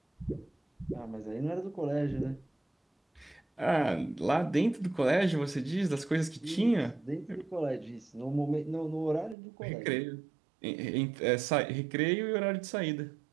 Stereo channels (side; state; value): left; drops out; at 9.3 s